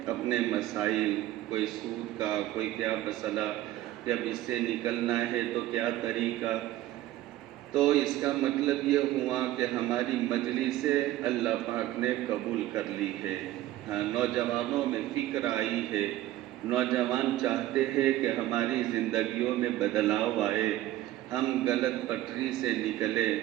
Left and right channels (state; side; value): quieter; left; 14.8 dB